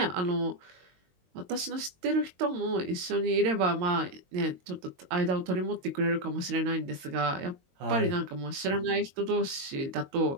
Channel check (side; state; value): left; late; 22 ms